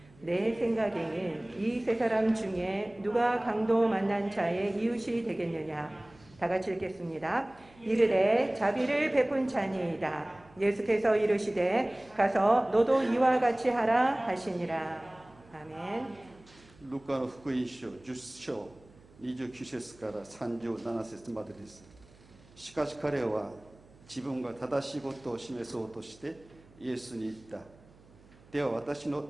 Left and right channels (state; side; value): noise; right; hum, 26 dB below the sound